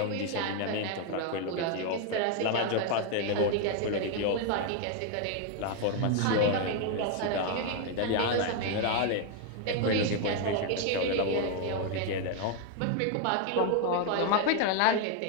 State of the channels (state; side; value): different; both; correlation 0.01